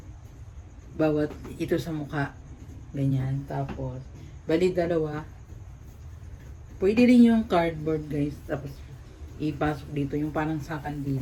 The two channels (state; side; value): identical; both; correlation 1.00